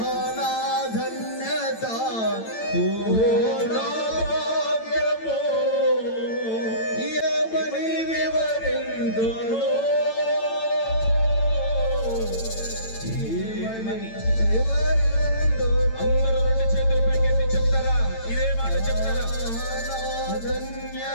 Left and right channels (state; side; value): late; right; 9.0 ms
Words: ఆహనాధన్యత ఓహో నా భాగ్యము ఏమని వివరించును అందరూ రెండు చేతులు పైకెత్తి చెప్తారా ఇదే మాట చెప్తారా